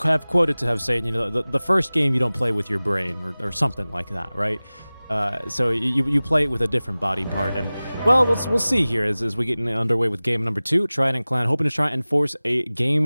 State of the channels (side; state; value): both; inverted; correlation -0.99